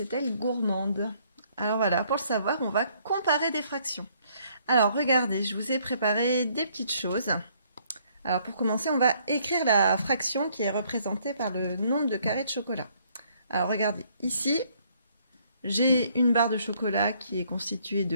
gourmande? Alors voilà, pour le savoir, on va comparer des fractions. Alors regardez, je vous ai préparé des petites choses. Alors pour commencer, on va écrire la fraction qui est représentée par le nombre de carrés de chocolat. Alors regardez, ici, j'ai une barre de chocolat qui est constituée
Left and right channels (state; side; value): inverted; both; correlation -0.66